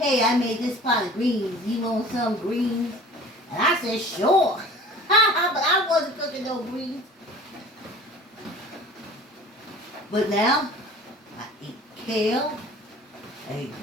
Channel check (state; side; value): normal; both; correlation 0.44